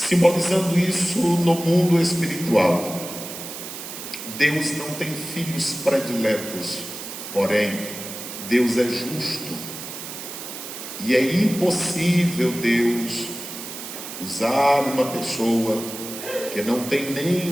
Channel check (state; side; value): noise; right; hiss, 10 dB below the sound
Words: isso no mundo espiritual. Deus não tem filhos prediletos, porém, Deus é justo, e é impossível Deus usar uma pessoa que não tem